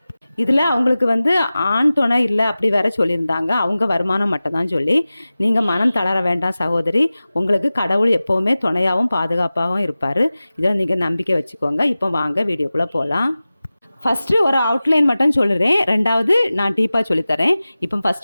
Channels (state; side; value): inverted; both; correlation -0.97